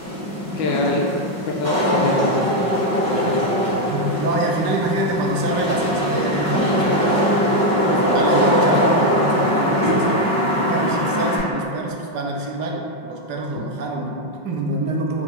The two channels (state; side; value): late; right; 5.5 ms